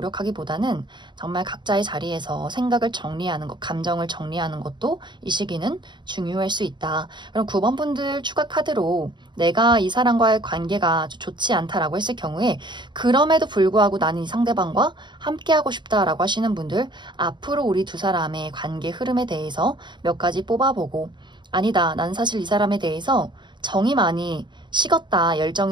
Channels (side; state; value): left; late; 0.22 ms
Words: 정말 각자의 자리에서 생각을 정리하는 것, 감정을 정리하는 것도 이 시기는 중요할 수 있다. 그럼 9번 분들 추가 카드로 내가 이 사람과의 관계가 좋지 않다라고 했을 경우에 그럼에도 불구하고 나는 이 상대방과 함께 하고 싶다라고 하시는 분들 앞으로 우리 두 사람의 관계 흐름에 대해서 몇 가지 뽑아보고 아니다, 난 사실 이 사람에 대해서 정이 많이 식었다,